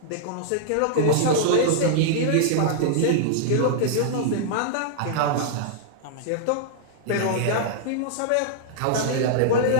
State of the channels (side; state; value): both; different; correlation -0.01